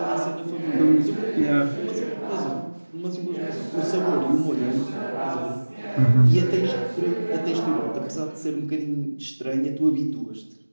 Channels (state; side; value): inverted; both; correlation -1.00